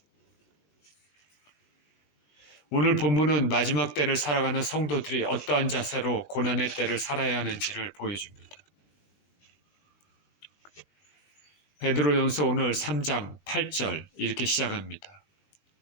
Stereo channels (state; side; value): late; right; 19 ms